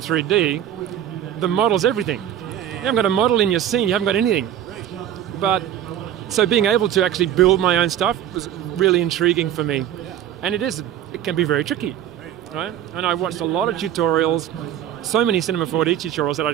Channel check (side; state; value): left; quieter; 10.8 dB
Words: the model's everything. You haven't got a model in your scene, you haven't got anything. But so being able to actually build my own stuff was really intriguing for me. And it can be very tricky, right? And I watched a lot of tutorials, so many Cinema 4D tutorials that I